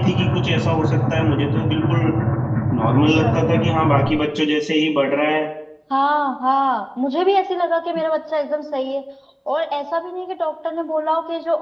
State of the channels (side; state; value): both; identical; correlation 1.00